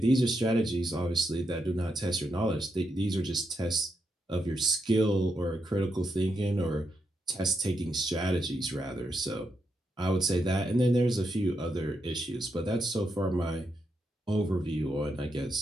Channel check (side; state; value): both; normal; correlation 0.82